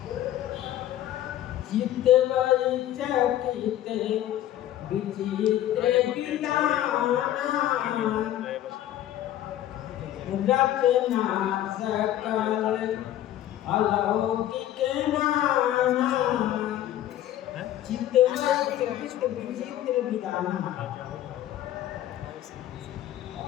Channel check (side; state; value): right; quieter; 12.7 dB